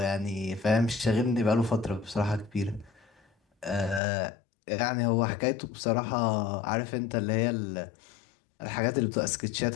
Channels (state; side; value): drops out; right; at 4.0 s